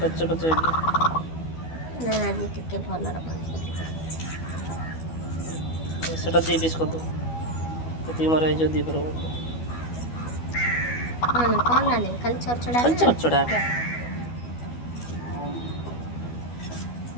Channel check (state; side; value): late; right; 12 ms